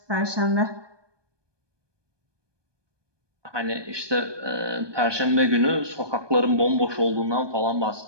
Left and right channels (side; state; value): left; late; 1.2 ms